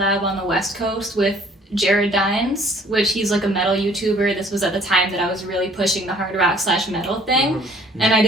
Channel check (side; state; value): both; normal; correlation 0.56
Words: on the West Coast with Jared Dines, which he's like a metal YouTuber. This was at the time that I was really pushing the hard rock / metal thing. And I